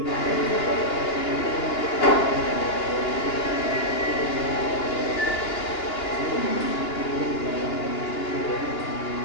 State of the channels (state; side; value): late; right; 2.9 ms